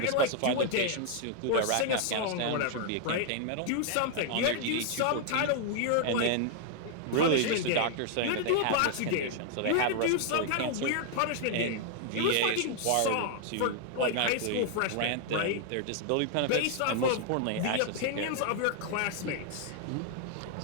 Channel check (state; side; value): different; both; correlation 0.00